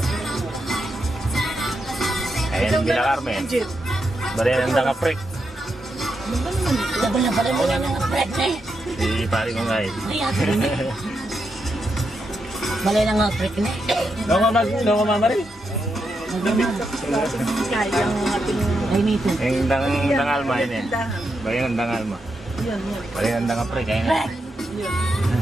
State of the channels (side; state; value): both; normal; correlation 0.84